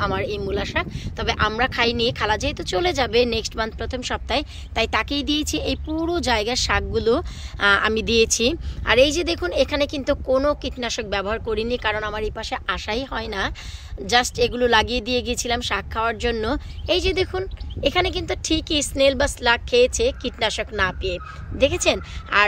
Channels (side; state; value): both; identical; correlation 1.00